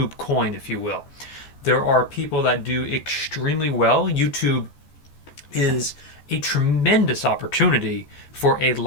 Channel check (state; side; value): late; right; 14 ms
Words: coin, if you will. There are people that do extremely well. YouTube is a tremendous opportunity for a